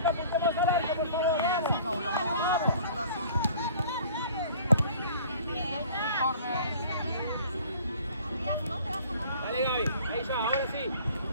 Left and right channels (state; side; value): inverted; both; correlation -0.49